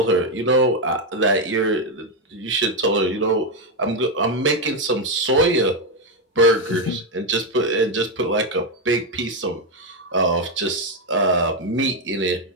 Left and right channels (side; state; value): both; normal; correlation 0.05